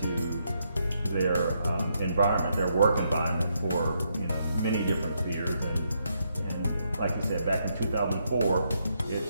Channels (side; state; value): both; inverted; correlation -0.78